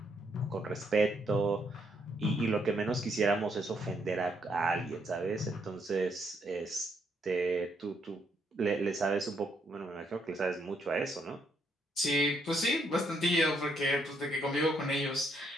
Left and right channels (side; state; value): both; normal; correlation 0.74